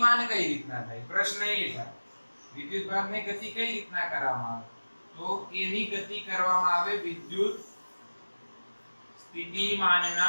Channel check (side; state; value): both; inverted; correlation -1.00